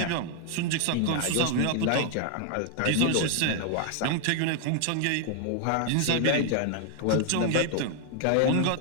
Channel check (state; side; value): different; both; correlation 0.00